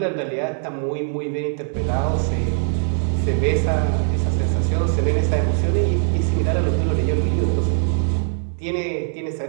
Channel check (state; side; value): silent; left; digital silence